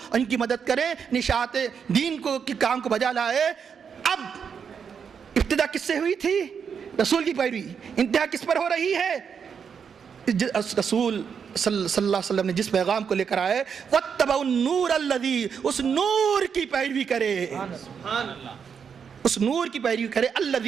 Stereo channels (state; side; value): quieter; left; 6.8 dB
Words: ان کی مدد کرے، نشاط دین کو کے کام کو بجا لائے. اب ابتدا کس سے ہوئی تھی؟ رسول کی پیروی. انتہا کس پر ہو رہی ہے؟ رسول صلی اللہ علیہ وسلم نے جس پیغام کو لے کر آئے، وَاتَّبَعُوا النُّورَ الَّذِي، اس نور کی پیروی کرے، اس نور کی پیروی کرے،